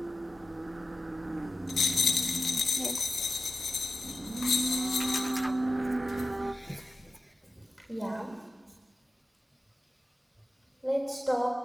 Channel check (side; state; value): both; normal; correlation 0.93